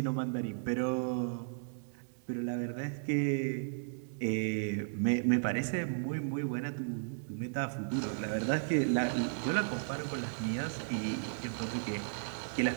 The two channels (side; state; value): left; silent; digital silence